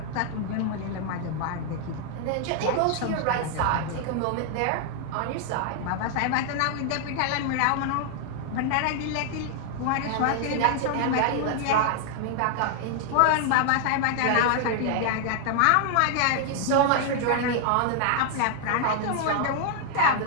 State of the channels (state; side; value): different; both; correlation 0.00